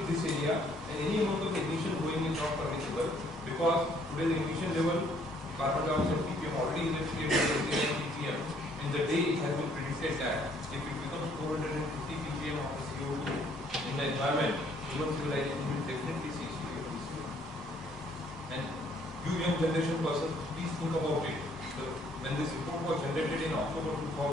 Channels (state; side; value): normal; both; correlation 0.64